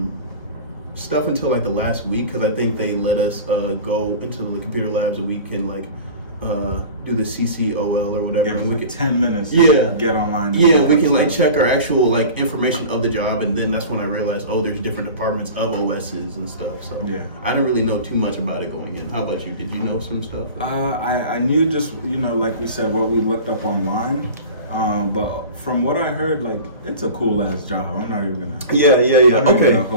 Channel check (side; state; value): both; inverted; correlation -0.37